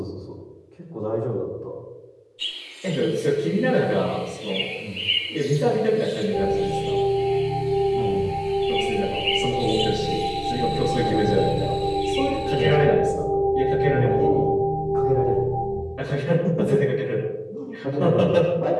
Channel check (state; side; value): identical; both; correlation 1.00